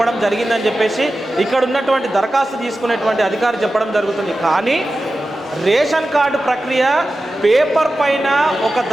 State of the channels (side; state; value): both; normal; correlation 0.93